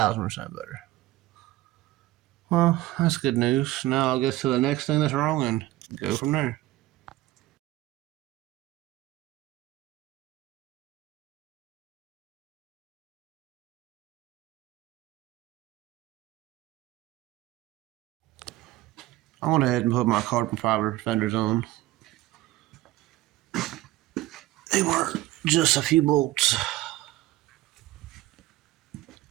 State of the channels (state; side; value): quieter; left; 16.6 dB